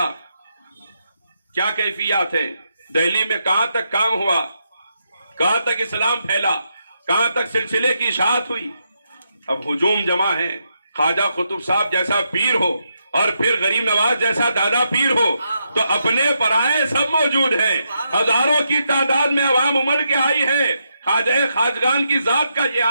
کیا کیفیات ہیں، دہلی میں کہاں تک کام ہوا، کہاں تک اسلام پھیلا، کہاں تک سلسلے کی اشاعت ہوئی۔ اب ہجوم جمع ہے، خواجہ قطب صاحب جیسا پیر ہو اور پھر غریب نواز جیسا دادا پیر ہو تو اپنے پرائے سب موجود ہیں، ہزاروں کی تعداد میں عوام امڑ کے آئی ہے۔ خواجہ خواجگان کی ذات کا یہ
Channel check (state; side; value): inverted; both; correlation -0.82